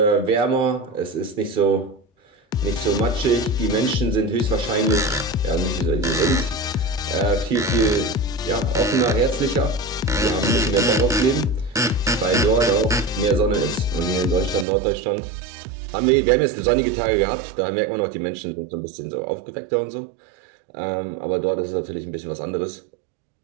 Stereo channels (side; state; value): left; drops out; at 14.7 s